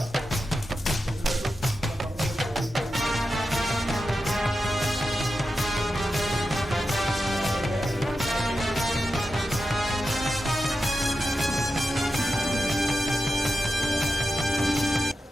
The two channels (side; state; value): both; normal; correlation 0.90